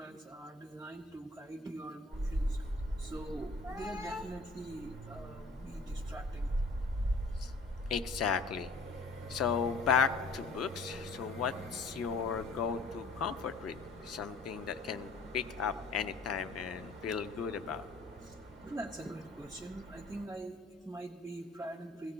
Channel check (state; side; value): quieter; right; 3.3 dB